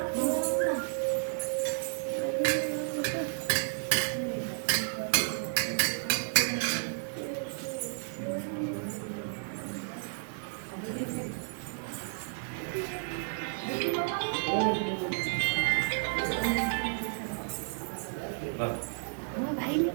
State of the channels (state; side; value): silent; left; digital silence